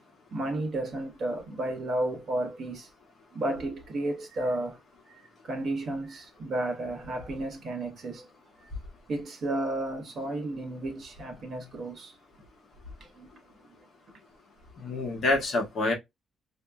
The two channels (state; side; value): normal; both; correlation 0.71